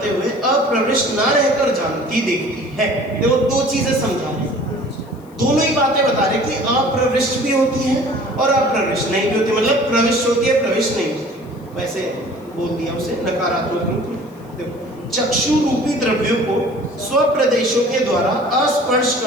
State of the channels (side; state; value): left; noise; hiss, 30 dB below the sound